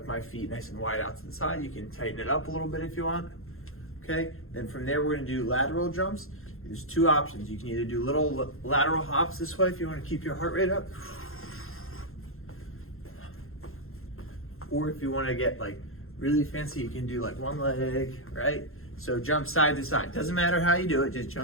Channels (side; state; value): right; late; 0.61 ms